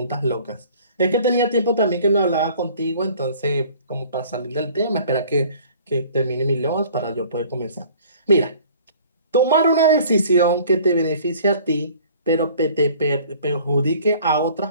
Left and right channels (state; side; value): inverted; both; correlation -0.51